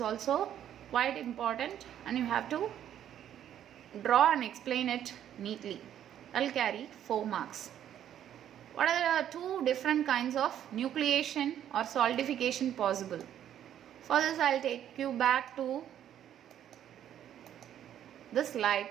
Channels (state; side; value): quieter; left; 10.5 dB